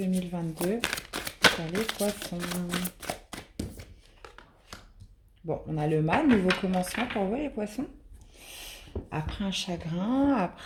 sur les poissons. Bon, on a le mât, nouveau commencement pour vous les poissons. Après un chagrin,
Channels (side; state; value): both; identical; correlation 1.00